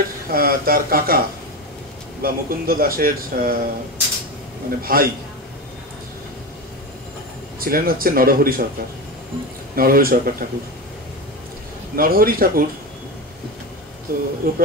তার কাকা বা মুকুন্দ দাসের মানে ভাই ছিলেন হচ্ছে নরহরি সরকার ঠাকুর। নরহরি ঠাকুর, তো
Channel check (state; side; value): normal; both; correlation 0.21